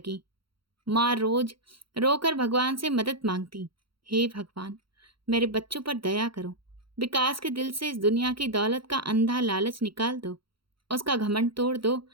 माँ रोज रोकर भगवान से मदद मांगती, हे भगवान, मेरे बच्चों पर दया करो। विकास के दिल से इस दुनिया की दौलत का अंधा लालच निकाल दो, उसका घमंड तोड़ दो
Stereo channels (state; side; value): late; left; 0.74 ms